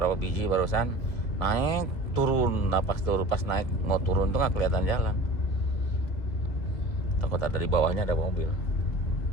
biji barusan naik turun. Nah pas turun, pas naik mau turun tuh nggak kelihatan jalan, takut ada di bawahnya ada mobil.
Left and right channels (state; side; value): late; right; 2.0 ms